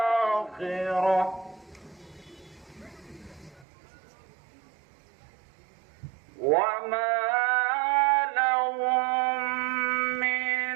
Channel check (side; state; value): left; drops out; at 3.7 s